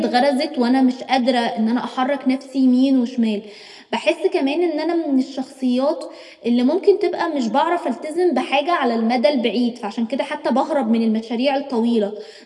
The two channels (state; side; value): identical; both; correlation 1.00